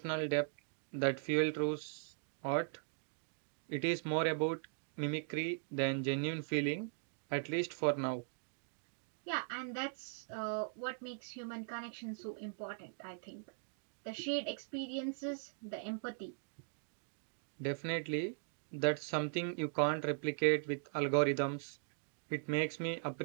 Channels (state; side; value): silent; left; digital silence